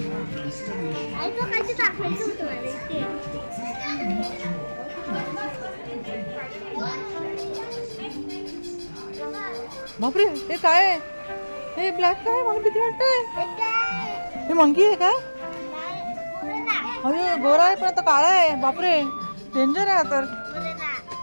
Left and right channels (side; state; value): both; inverted; correlation -1.00